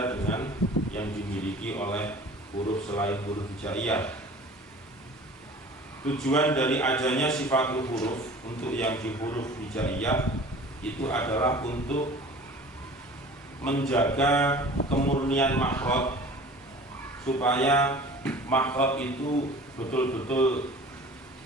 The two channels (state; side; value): normal; both; correlation 0.44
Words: dengan yang dimiliki oleh huruf selain huruf hijaiyah. Tujuan dari adanya sifatul huruf untuk yang di huruf hijaiyah itu adalah untuk menjaga kemurnian makhraj, supaya makhraj itu betul-betul